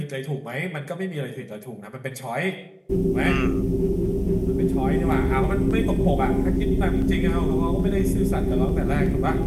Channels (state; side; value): identical; both; correlation 1.00